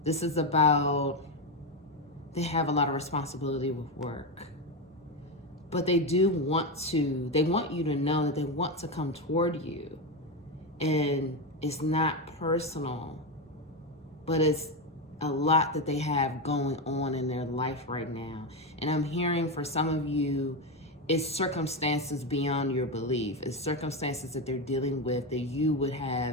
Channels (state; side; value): normal; both; correlation 0.11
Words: This is about, they have a lot of responsibility with work. But they want you to know that they want to come toward you. And it's not personal, but it's a lot that they have going on in their life right now. And I'm hearing for some of you, it's circumstances beyond your belief. It's circumstances that they're dealing with that you would